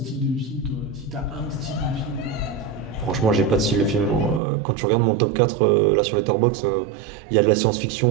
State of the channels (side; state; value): left; drops out; at 4.4 s